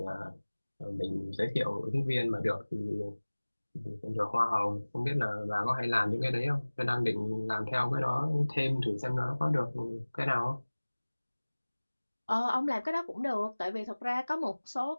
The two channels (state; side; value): inverted; both; correlation -1.00